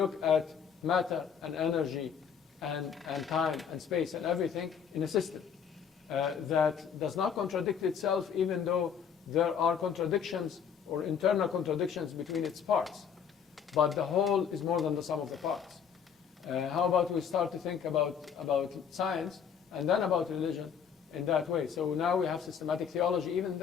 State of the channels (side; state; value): right; quieter; 7.4 dB